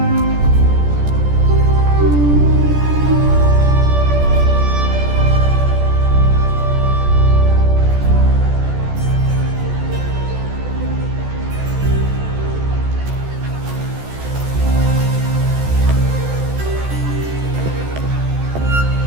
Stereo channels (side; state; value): left; late; 14 ms